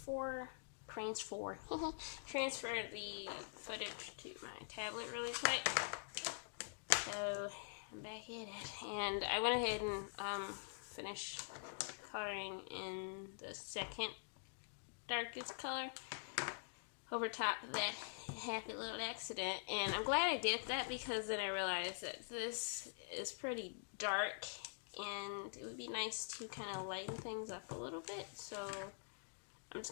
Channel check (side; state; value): right; silent; digital silence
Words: the footage to my tablet really quick. So I'm back at it, and I went ahead and finished coloring in the second darkest color. over top that happy little accident. And I'm glad I did that, because then I realized that this is pretty dark and it would be nice to kind of lighten things up a little bit. So I'm just